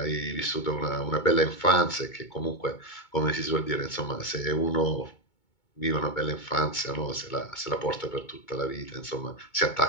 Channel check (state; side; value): late; right; 2.2 ms